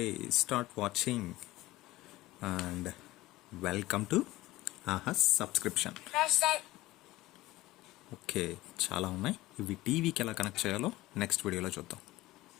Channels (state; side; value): quieter; right; 18.0 dB